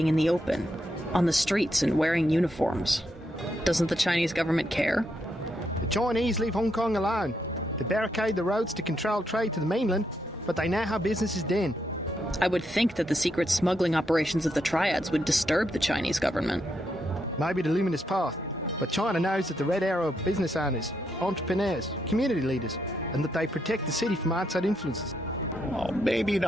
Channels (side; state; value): both; normal; correlation 0.79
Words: in the open, on the streets and wearing uniforms. Doesn't the Chinese government care? The Chinese leave Hong Kong alone. They barricade the roads to control trade to the mainland, but they know how business is done. I would think that the secret smuggling operations of the triads would disturb the Chinese government. Maybe the luminous path, but China knows that the Red Arrow are business owners, entrepreneurs, community leaders, and that they protect the city from outside influences. Oh, maybe